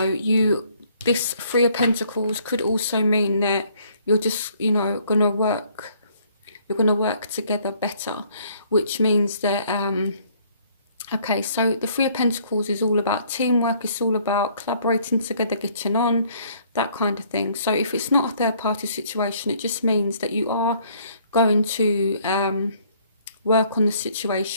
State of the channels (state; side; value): inverted; both; correlation -0.62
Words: this 3 of Pentacles could also mean that you're just, you know, gonna work together better, which means that, okay, so the 3 of Pentacles is all about teamwork. It's all about collaborating together, getting on, that kind of thing. So if it's not a third party situation, it just means that you are going to work on the